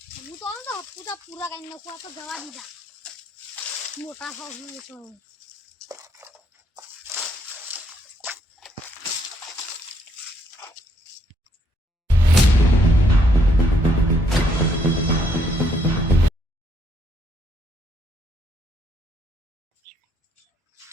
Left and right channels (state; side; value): normal; both; correlation 0.71